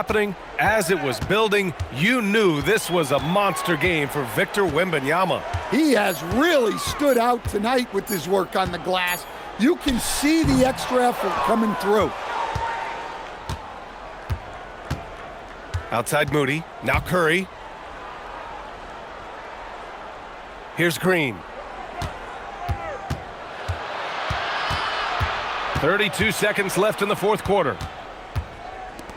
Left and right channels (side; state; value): both; identical; correlation 1.00